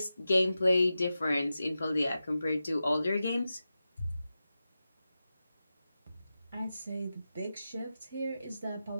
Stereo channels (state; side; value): inverted; both; correlation -0.92